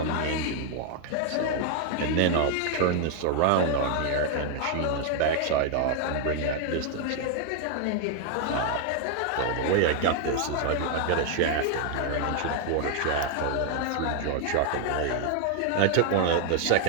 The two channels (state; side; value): different; both; correlation 0.00